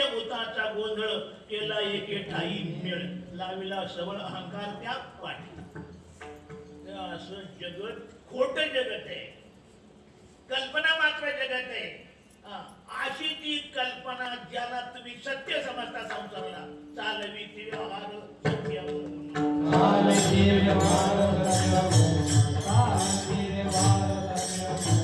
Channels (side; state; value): both; identical; correlation 1.00